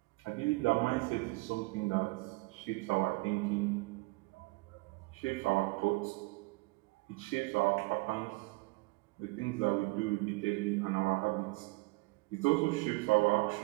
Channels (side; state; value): left; quieter; 25.0 dB